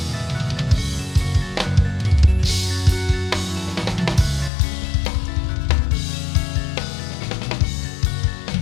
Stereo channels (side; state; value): right; drops out; at 4.5 s